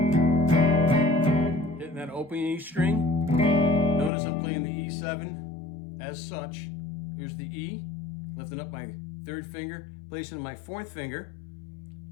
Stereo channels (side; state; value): right; drops out; at 4.1 s